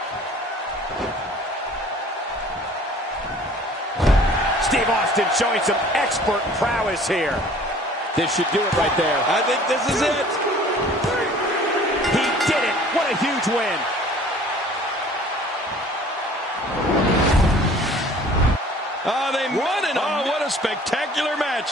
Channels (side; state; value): both; normal; correlation 0.50